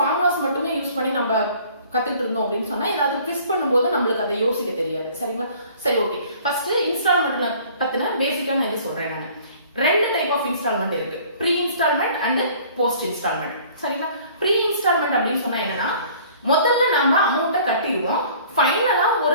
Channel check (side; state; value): both; inverted; correlation -0.52